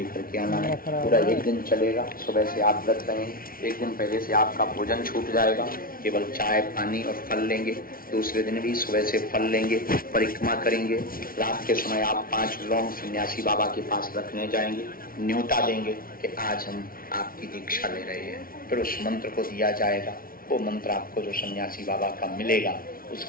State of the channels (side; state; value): right; late; 0.43 ms